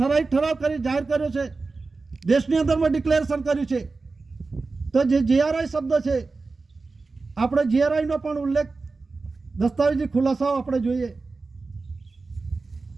કરી જાહેર કર્યો છે. દેશની અંદરમાં ડિક્લેરેશન કર્યું છે. તો જે જીઆરઆઈ શબ્દ છે આપણે જીઆરઆઈનો પણ ઉલ્લેખ દસ્તાવેજી ખુલાસાઓ આપણે જોઈએ.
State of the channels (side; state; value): left; quieter; 3.9 dB